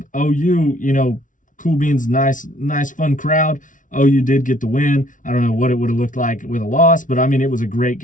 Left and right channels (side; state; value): right; late; 0.38 ms